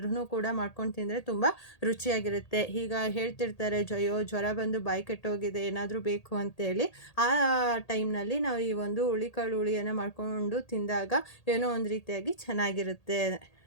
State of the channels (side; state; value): right; late; 1.8 ms